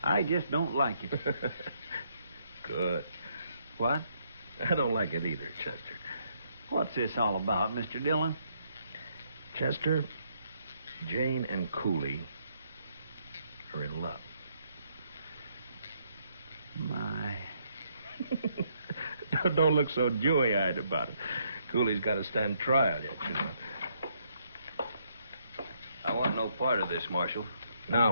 I just don't like it. Good. What? I don't like it either, Chester. What's this all about, Mr. Dillon? Chester, Jane and Cooley are in love. My. Don't look so dewy-eyed about it. Cooley's got to stand trial yet, you know. I want no part of this, Marshal.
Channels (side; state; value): both; inverted; correlation -0.72